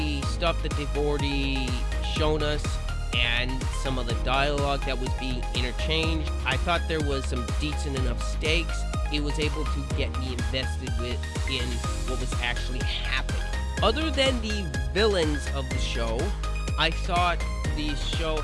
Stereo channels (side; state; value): both; identical; correlation 1.00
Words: stuff that they've already shown us and some of the dialogue that was being interchanged, I thought there was some decent enough stakes. It was able to get me invested in what was actually happening. Other than the villains of the show, I thought the show